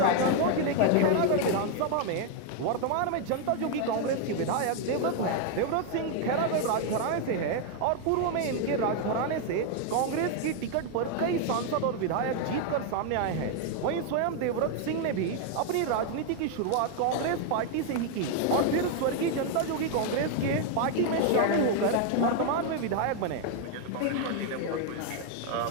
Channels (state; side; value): different; both; correlation 0.01